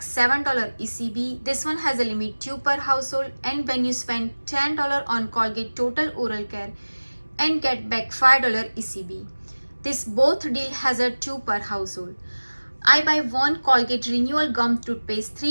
$7 ECB, this one has a limit 2 per household. And when you spend $10 on Colgate Total Oral Care and get back $5 ECB, this both deal has a 2 per household. I buy one Colgate Renewal Gum Toothpaste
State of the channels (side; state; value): both; inverted; correlation -1.00